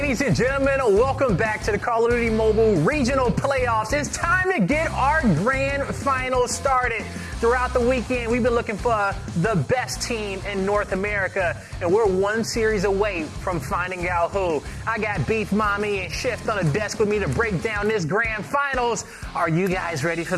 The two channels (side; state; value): both; identical; correlation 1.00